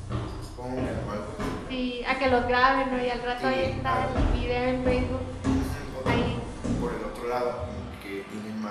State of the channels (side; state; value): both; identical; correlation 1.00